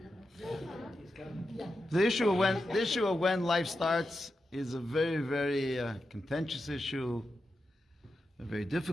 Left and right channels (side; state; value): both; normal; correlation 0.89